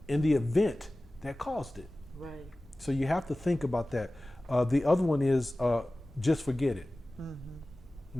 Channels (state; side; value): normal; both; correlation 0.97